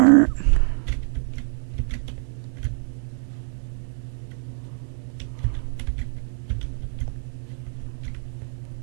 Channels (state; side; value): silent; left; digital silence